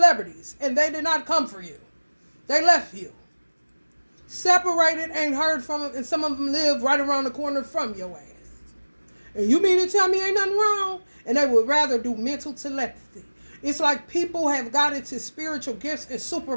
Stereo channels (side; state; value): both; inverted; correlation -1.00